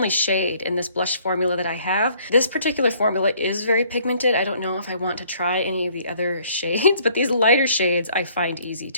shade in this blush formula that I have. This particular formula is very pigmented. I don't know if I want to try any of the other shades, but these lighter shades I find easy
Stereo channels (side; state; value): both; inverted; correlation -0.61